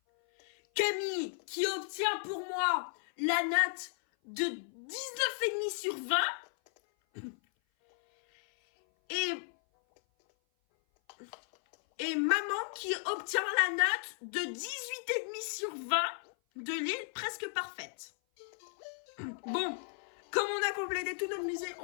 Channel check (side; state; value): right; silent; 55 dB below the other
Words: Camille, qui obtient pour moi la note de 19,5 sur 20. Et maman qui obtient la note de 18,5 sur 20 de l'île presque parfaite. Bon, comme on a complété tout notre musée,